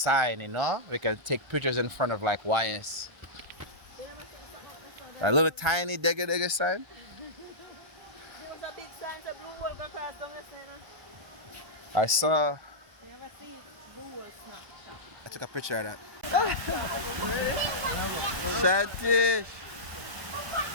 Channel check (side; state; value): left; late; 1.3 ms